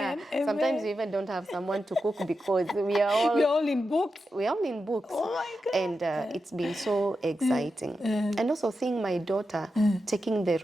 Amen. Sometimes we even don't have someone to cook because we're all in books. We're all in books. Oh my God. And it's been so exciting. And also seeing my daughter taking the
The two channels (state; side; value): normal; both; correlation 0.89